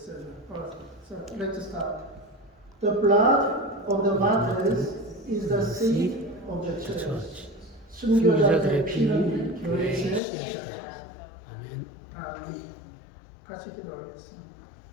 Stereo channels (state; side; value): drops out; right; at 10.2 s